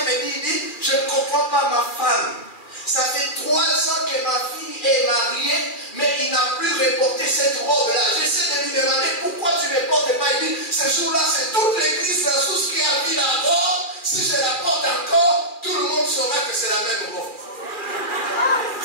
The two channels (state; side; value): late; right; 2.4 ms